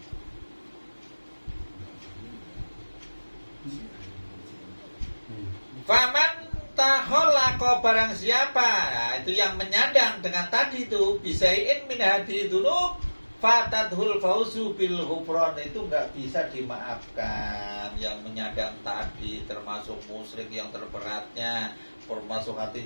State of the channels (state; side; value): inverted; both; correlation -1.00